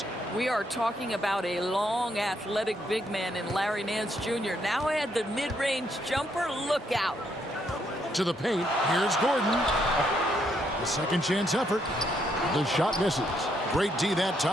We are talking about a long, athletic big man in Larry Nance Jr. Now add the mid-range jumper. Look out. To the paint. Here's Gordon. The second chance effort. The shot misses. Great D that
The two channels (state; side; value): normal; both; correlation 0.74